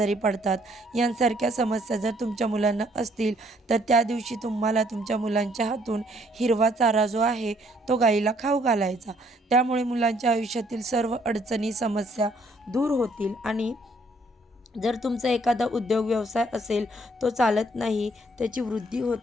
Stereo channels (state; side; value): normal; both; correlation 0.65